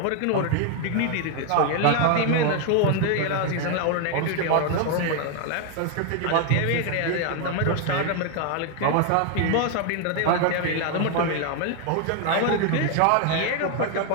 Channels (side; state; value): both; different; correlation 0.01